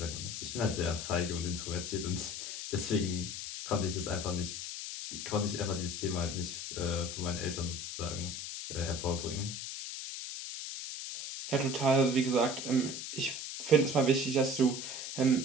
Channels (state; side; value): noise; left; hiss, 6 dB below the sound